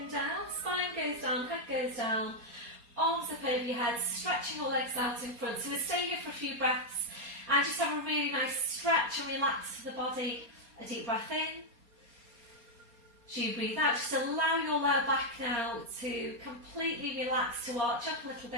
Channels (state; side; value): late; left; 4.3 ms